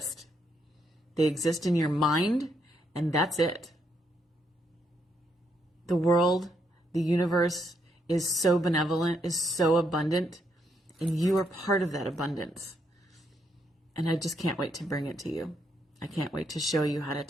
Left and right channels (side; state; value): both; normal; correlation 0.76